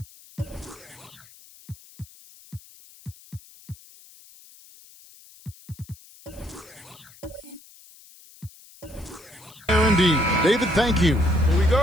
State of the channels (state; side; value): noise; left; hiss, 23 dB below the sound